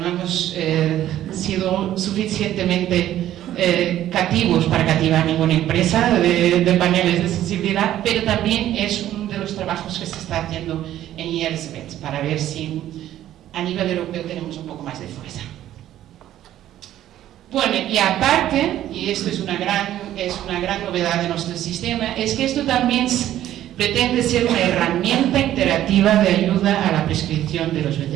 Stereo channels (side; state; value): left; quieter; 12.6 dB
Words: hemos sido suficientemente cativos para cativar ninguna empresa de paneles de sensibilidad, pero también es uno de los trabajos que se está haciendo en IELSVET para ver si a nivel europeo tenemos un poco más de fuerza. Bueno, y aparte, y esto es una gran novedad de nuestro sistema, es que esto también pretende ser una herramienta interactiva de ayuda a la prescripción de los